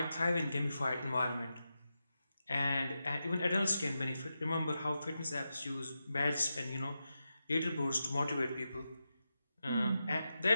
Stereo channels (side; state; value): both; inverted; correlation -0.89